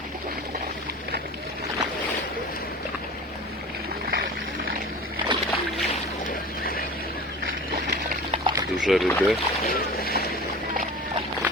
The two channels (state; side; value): normal; both; correlation 0.36